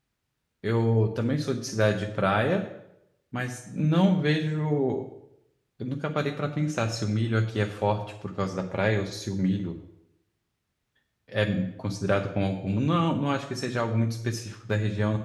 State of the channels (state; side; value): identical; both; correlation 1.00